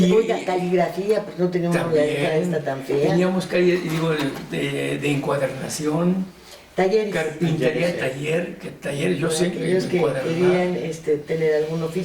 Oiga, caligrafía, pues no teníamos la letra esta tan fea. Teníamos calle, de encuadernación, Talleres. carpintería, taller, yo sé Aquellos que encuadernar. querían tener algún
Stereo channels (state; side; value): identical; both; correlation 1.00